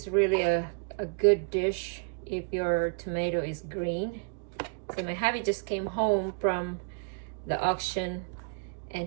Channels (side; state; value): left; quieter; 39.1 dB